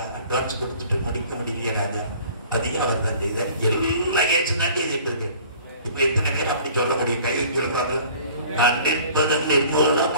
அட்வான்ஸ் கொடுத்துட்டு முடிக்க முடியல. அதையும் அவர் தான் செய்தார். எல்லாம் ஏற்று தான் செய்துட்டு இருக்கு. இப்ப எத்தனை பேர் அப்படி சொல்ல முடியும்? கை சொல்லுவாங்க. நான் நிற்பதன்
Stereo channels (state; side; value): inverted; both; correlation -0.50